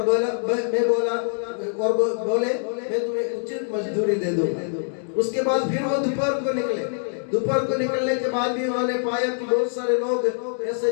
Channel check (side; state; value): right; silent; 63 dB below the other